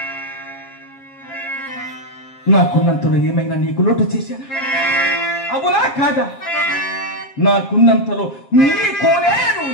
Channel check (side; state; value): right; late; 7.5 ms